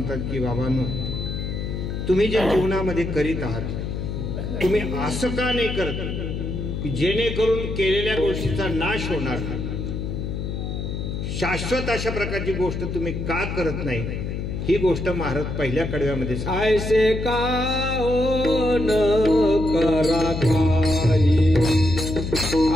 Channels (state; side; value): noise; left; hum, 4 dB below the sound